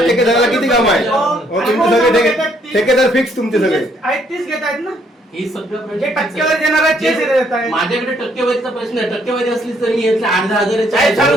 ठेकेदाराला किती काम आहे? हो, तुमचे सगळे ठेकेदार फिक्स तुमचे सगळे. आहेत तीच घेत आहेत ना ही सगळं जे टक्केवारी देणार आहेत तेच देत आहेत. माझ्याकडे टक्केवारीचा प्रश्न आहे. टक्केवारी असली तर मी यातल्या 8-10 साहेब,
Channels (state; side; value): normal; both; correlation 0.68